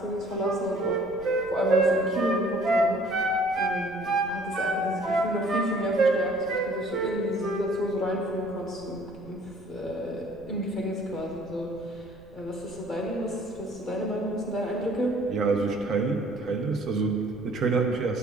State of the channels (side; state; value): right; noise; rumble, 23 dB below the sound